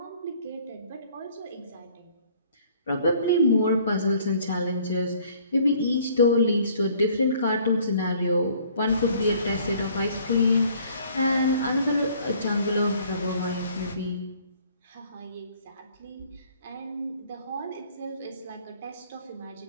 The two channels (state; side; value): inverted; both; correlation -0.57